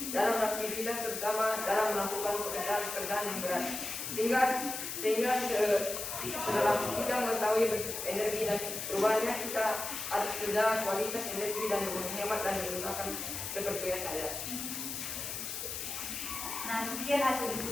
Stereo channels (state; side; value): noise; left; hiss, 5 dB below the sound